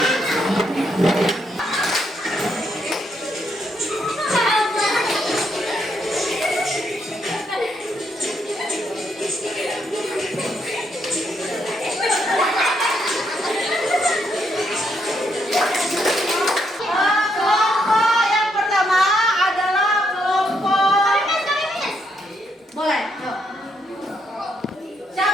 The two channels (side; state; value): both; normal; correlation 0.76